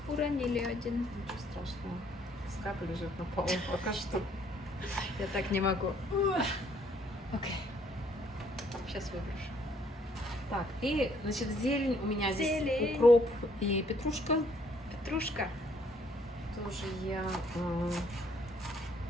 Уронили один. Ничего страшного. Пускай лежит на полу пока что. Я так не могу. Окей. Сейчас выброшу. Так, и, значит, зелень. У меня здесь Зелень. укроп и петрушка. Петрушка. Тоже я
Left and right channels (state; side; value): normal; both; correlation 0.65